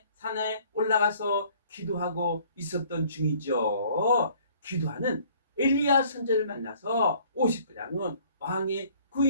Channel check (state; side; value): inverted; both; correlation -0.57